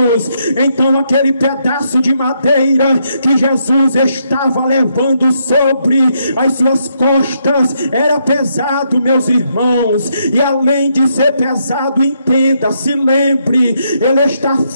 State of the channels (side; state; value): both; inverted; correlation -0.76